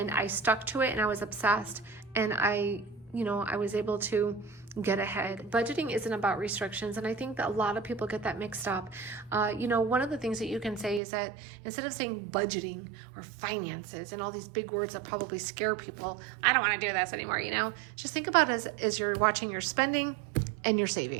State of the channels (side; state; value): left; drops out; at 11.0 s